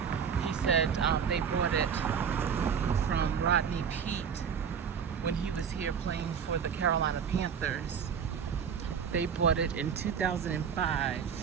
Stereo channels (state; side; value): quieter; left; 7.2 dB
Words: he said they bought it from Rodney Peete when he was here playing for the Carolina Panthers. They bought it in 2005.